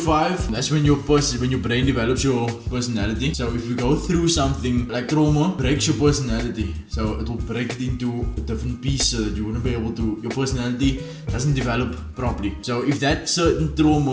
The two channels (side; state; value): both; identical; correlation 1.00